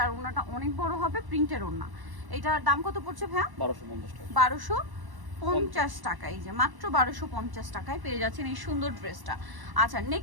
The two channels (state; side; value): late; left; 1.1 ms